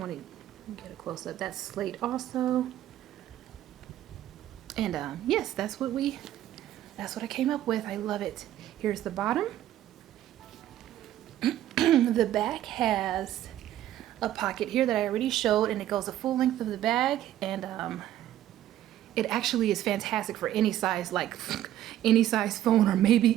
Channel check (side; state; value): left; quieter; 12.6 dB